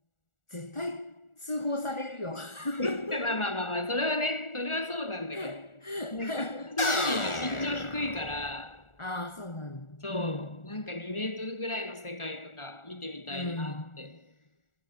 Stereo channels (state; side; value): late; right; 1.4 ms